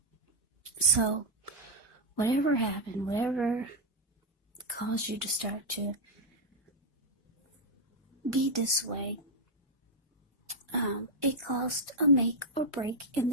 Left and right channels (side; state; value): both; normal; correlation 0.01